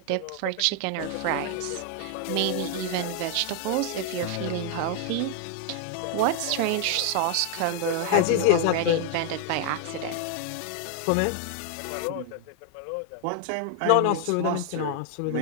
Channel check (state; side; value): different; both; correlation 0.00